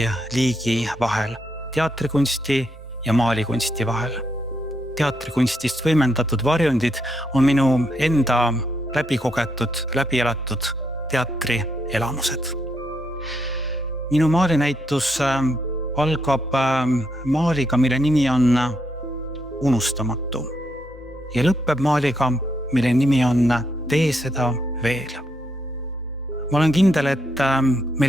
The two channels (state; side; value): normal; both; correlation 0.77